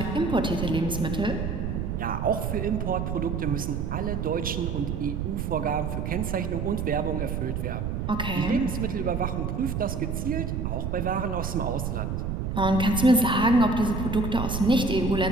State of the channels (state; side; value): noise; right; rumble, 2 dB below the sound